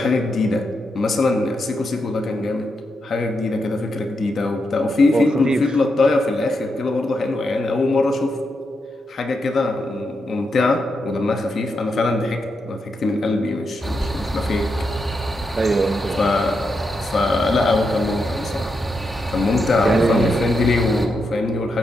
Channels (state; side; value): normal; both; correlation 0.84